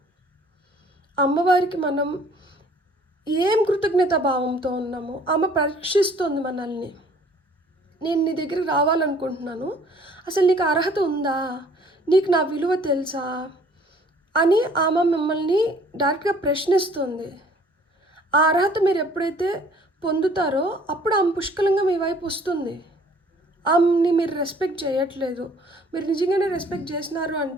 అమ్మవారికి మనం ఏం కృతజ్ఞతా భావంతో ఉన్నామో ఆమె పరీక్షిస్తుంది మనల్ని. నేను నీ దగ్గరికి రావాలనుకుంటున్నాను, అసలు నీకు అర్హత ఉందా, నీకు నా విలువ తెలుసా అని ఆమె మిమ్మల్ని డైరెక్ట్గా ప్రశ్నిస్తుంది. ఆ అర్హత మీరు ఎప్పుడైతే పొందుతారో అప్పుడు ఆమె పుష్కలంగా మీ వైపు వస్తుంది. ఆమెని మీరు రెస్పెక్ట్ చేయట్లేదు, మీరు నిజంగానే రెస్పెక్ట్ చేసినారు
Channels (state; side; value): normal; both; correlation 0.56